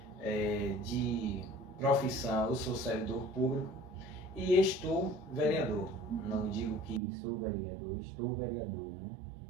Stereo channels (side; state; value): left; drops out; at 7.0 s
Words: de profissão eu sou servidor público e estou vereador. Não digo que sou vereador, estou vereador,